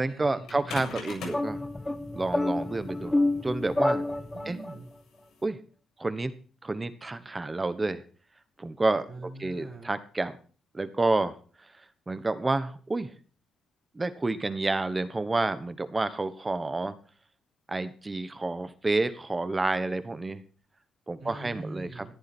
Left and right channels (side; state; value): both; normal; correlation 0.97